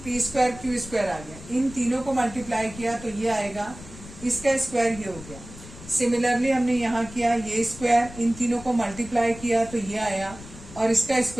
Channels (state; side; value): noise; left; rumble, 16 dB below the sound